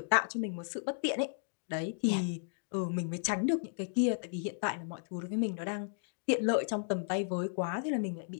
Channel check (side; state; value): right; silent; digital silence